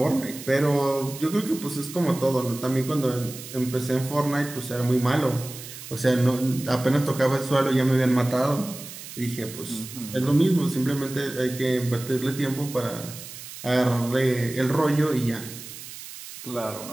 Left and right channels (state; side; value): noise; right; hiss, 13 dB below the sound